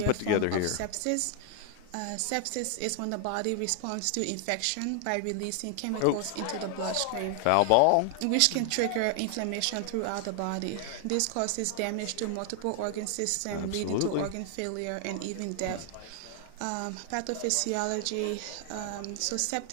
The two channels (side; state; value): both; different; correlation 0.00